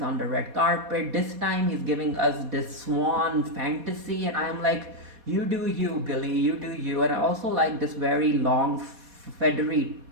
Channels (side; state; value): left; late; 4.2 ms